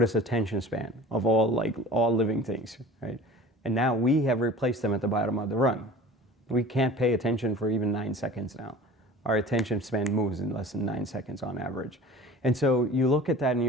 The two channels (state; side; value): normal; both; correlation 0.42